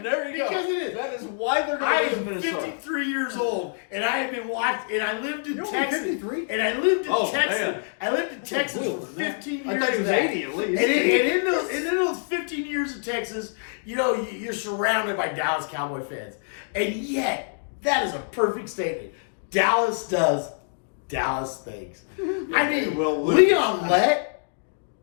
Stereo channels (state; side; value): silent; right; digital silence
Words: There you go. Because it is. That is why they're I going to lose am Minnesota. 53 years old, and I have been watching, and I lived in You're only Texas. 53? And I lived in Oh, Texas. man. I lived in Texas for older than that. 15 years. I thought he was of that. 80 at least. And in those 15 years of Texas, you know, you're surrounded by Dallas Cowboy fans. And yet, that is a perfect statement. Dallas does Dallas things. I they mean, will lose. Leon Lett